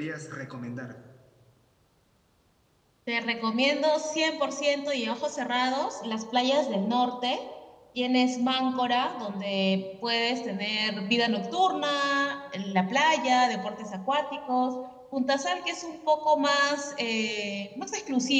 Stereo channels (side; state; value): both; identical; correlation 1.00